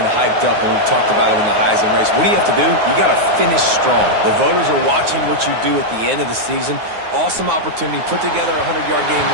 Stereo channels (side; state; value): left; late; 9.5 ms